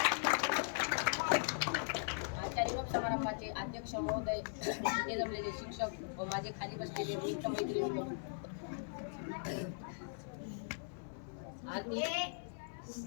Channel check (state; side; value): silent; right; 51 dB below the other